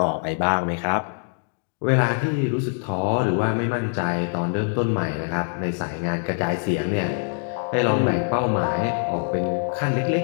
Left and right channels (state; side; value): silent; right; 60 dB below the other